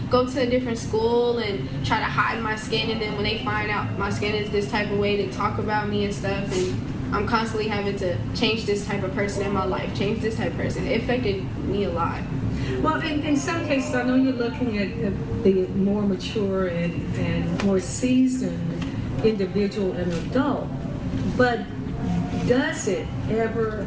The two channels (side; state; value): both; identical; correlation 1.00